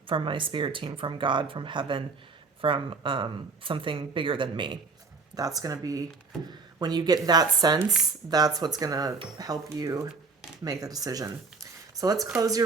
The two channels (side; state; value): left; quieter; 4.3 dB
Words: my spirit team, from God, from heaven, from something bigger than me. That's going to be, when you get that sense, that's what's going to help you make the decision. So let's close